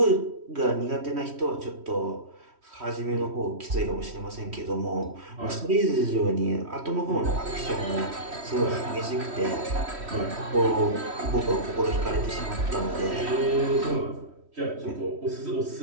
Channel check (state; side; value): late; left; 3.1 ms